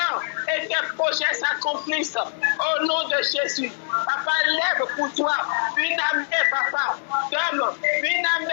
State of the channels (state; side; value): silent; right; digital silence